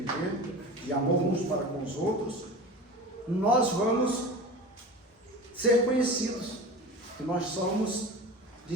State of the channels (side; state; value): both; normal; correlation 0.33